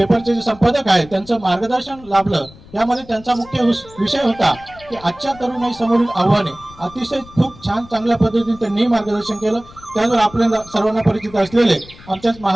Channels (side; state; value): left; noise; rumble, 21 dB below the sound